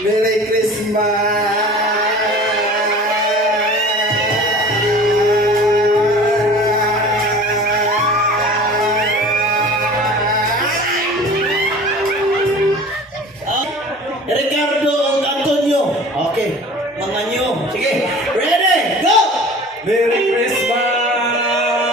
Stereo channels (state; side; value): normal; both; correlation 0.42